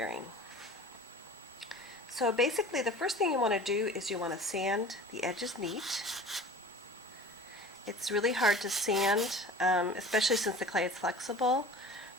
So basically the first thing you want to do is you want to sand the edges neat. It's really hard to sand, especially since the clay is flexible,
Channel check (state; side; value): normal; both; correlation 0.41